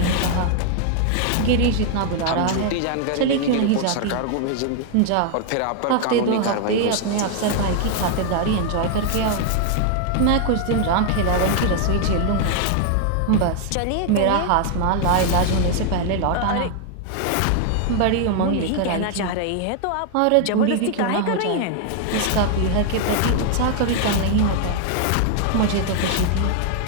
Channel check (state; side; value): different; both; correlation 0.00